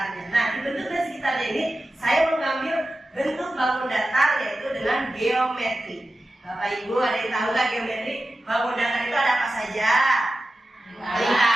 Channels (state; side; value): normal; both; correlation 0.93